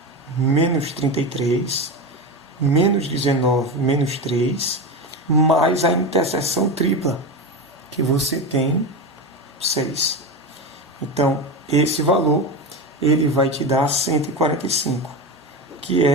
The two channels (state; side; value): normal; both; correlation 0.19